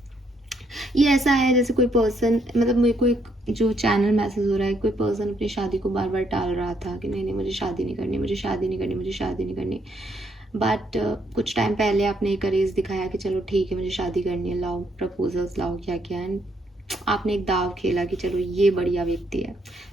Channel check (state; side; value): normal; both; correlation 0.73